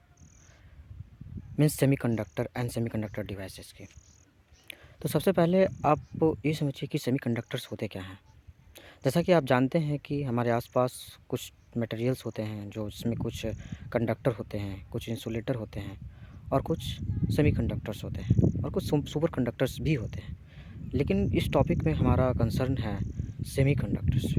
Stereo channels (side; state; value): both; identical; correlation 1.00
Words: means semiconductor and semiconductor devices की। तो सबसे पहले आप ये समझिए कि सेमीकंडक्टर्स होते क्या हैं। जैसा कि आप जानते हैं कि हमारे आसपास कुछ मटेरियल्स होते हैं जो जिसमें कुछ कंडक्टर होते हैं, कुछ इंसुलेटर होते हैं और कुछ सेमीकंडक्टर्स होते हैं और कुछ सुपर कंडक्टर्स भी होते हैं। लेकिन इस टॉपिक में हमारा कंसर्न है सेमीकंडक्टर